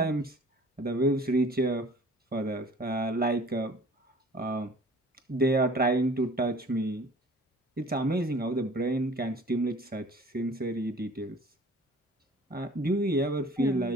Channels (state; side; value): normal; both; correlation 0.49